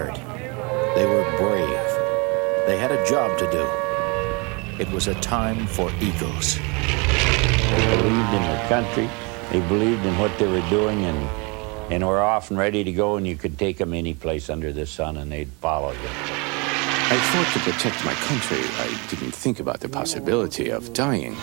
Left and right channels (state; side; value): quieter; left; 30.0 dB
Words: They were brave. They had a job to do. It was a time for eagles. They believed in their country. They believed in what they were doing, and were off and ready to go, and you could take them any place under the sun, and they'd follow you. I thought to protect my country. I didn't think about the possibility of dying.